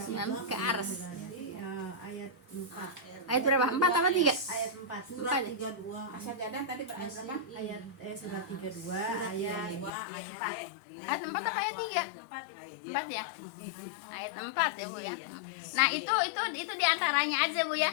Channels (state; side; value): drops out; right; at 9.9 s